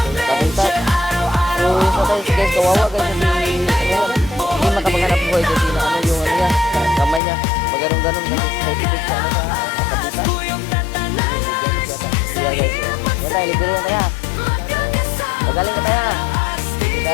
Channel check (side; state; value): right; drops out; at 7.2 s